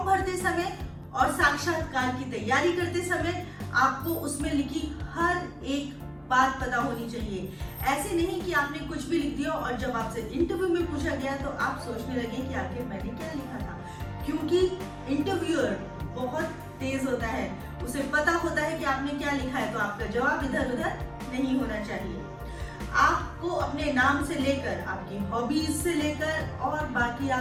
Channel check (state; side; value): identical; both; correlation 1.00